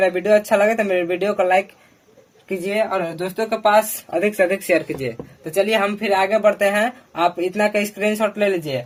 वीडियो अच्छा लगे तो मेरे वीडियो को लाइक कीजिए, और दोस्तों के पास अधिक से अधिक शेयर कीजिए। तो चलिए हम फिर आगे बढ़ते हैं। आप इतना का स्क्रीनशॉट ले लीजिए।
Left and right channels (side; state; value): both; identical; correlation 1.00